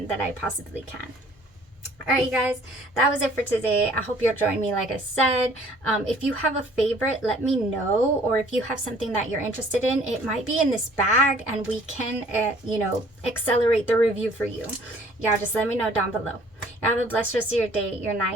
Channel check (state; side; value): normal; both; correlation 0.56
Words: that I possibly can. All right, you guys, that was it for today. I hope you'll join me, like I said. If you have a favorite, let me know. Or if you have something that you're interested in, it might be in this bag and we can, you know, accelerate the review for you. Y'all just let me know down below. Y'all have a blessed rest of your day, your